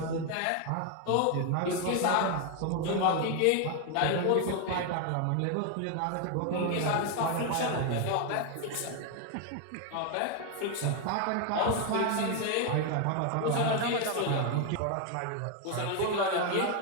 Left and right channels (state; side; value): different; both; correlation 0.01